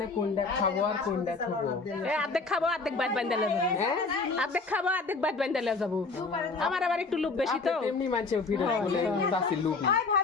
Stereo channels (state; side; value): quieter; right; 3.9 dB